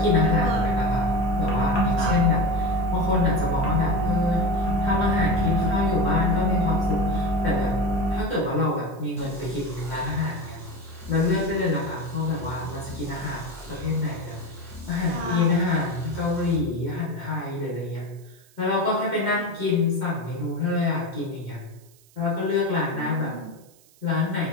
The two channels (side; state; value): right; noise; hiss, 29 dB below the sound